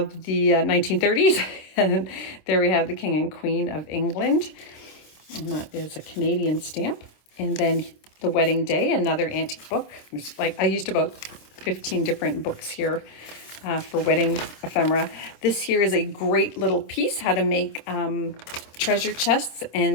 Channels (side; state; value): right; late; 26 ms